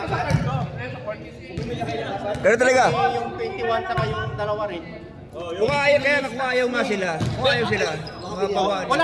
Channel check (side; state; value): both; identical; correlation 1.00